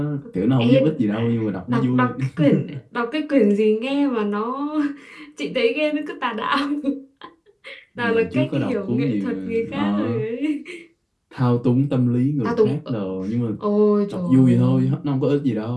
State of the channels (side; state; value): both; identical; correlation 1.00